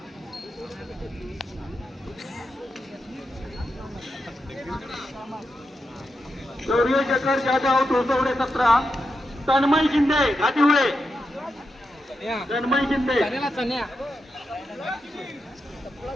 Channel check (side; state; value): both; normal; correlation 0.87